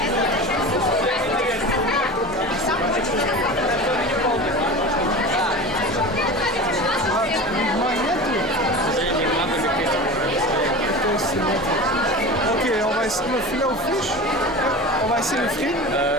Ok, on va essayer le filet aux fiches. On va essayer les frites.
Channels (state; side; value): normal; both; correlation 0.31